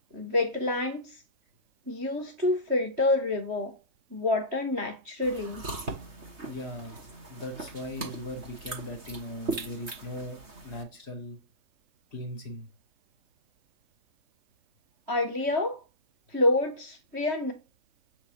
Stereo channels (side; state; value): left; late; 3.2 ms